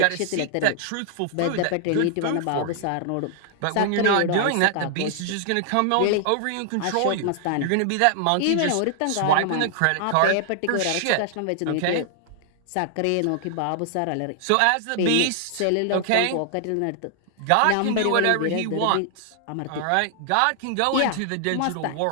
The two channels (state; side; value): different; both; correlation 0.00